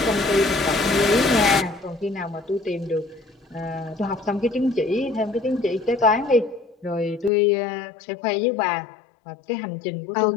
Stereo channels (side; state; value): right; drops out; at 7.3 s